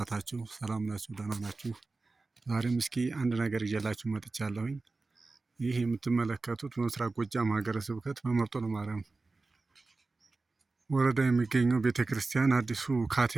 ሰላም ናችሁ? ደህና ናችሁ? ዛሬም እስኪ አንድ ነገር ይዤላችሁ መጥቻለሁኝ። ይህ የምትመለከቱት በምስራቅ ጎጃም ሀገረ ስብከት በመርጦ ለማርያም ወረዳ የሚገኘው ቤተ ክርስቲያን አዲሱ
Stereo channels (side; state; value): left; quieter; 3.6 dB